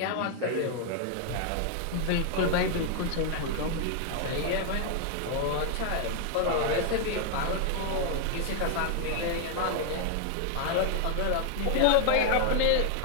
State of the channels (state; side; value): different; both; correlation 0.00